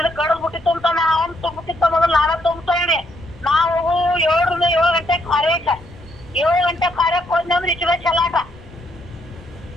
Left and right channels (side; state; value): left; noise; rumble, 22 dB below the sound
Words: ಕಡದ್ ಬಿಟ್ಟಿತ್ತು ಅಂತಾನೆ ಅವ್ನು ತುಂಬಿಟ್ಟಿತ್ತ ಮೊದಲು ನಾನೇ ತುಂಬ್ತೇನೆ ನಾವು 7 ಗಂಟೆ ಕಾರ್ಯಕ್ಕೆ 7 ಗಂಟೆ ಕಾರ್ಯಕ್ಕೆ ಹೋದ್ನಿ ಅಂದ್ರೆ ಇಚ್ಚುವೆ ಚಲಾಟ